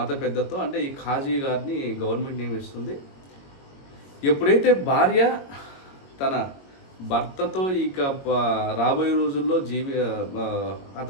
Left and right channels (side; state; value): right; late; 22 ms